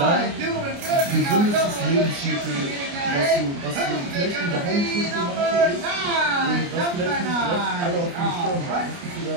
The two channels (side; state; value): left; late; 29 ms